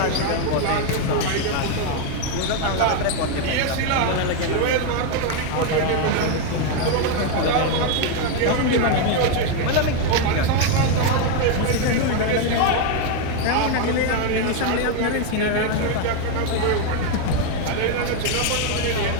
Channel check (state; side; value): different; both; correlation 0.01